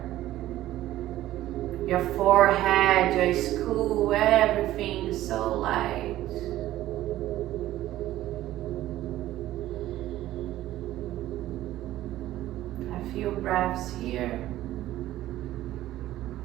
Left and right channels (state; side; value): quieter; left; 14.5 dB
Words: Your forehead, your skull, everything is so light. A few breaths here.